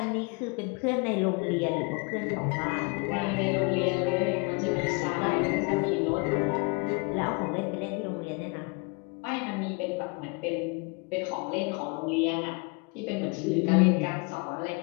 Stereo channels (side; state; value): right; quieter; 30.4 dB